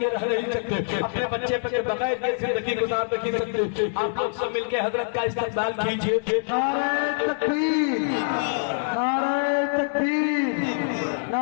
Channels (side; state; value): right; silent; digital silence